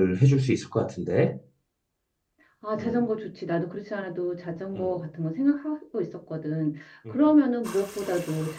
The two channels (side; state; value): both; identical; correlation 1.00